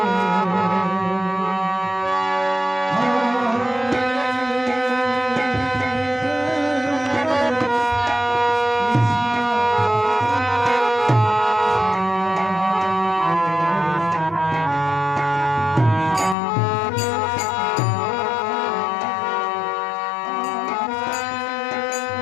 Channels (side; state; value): right; drops out; at 16.4 s